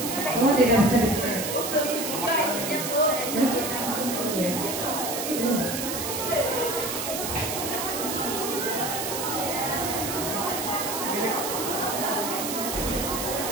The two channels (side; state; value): right; noise; hiss, 4 dB below the sound